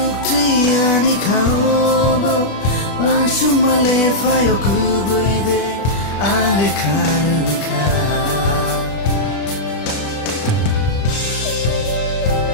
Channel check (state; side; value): late; right; 25 ms